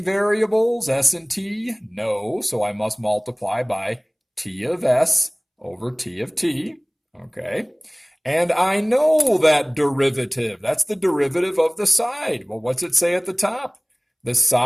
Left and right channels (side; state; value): both; identical; correlation 1.00